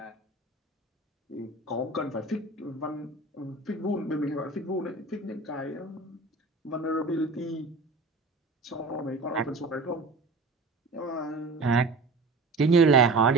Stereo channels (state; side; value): quieter; left; 3.4 dB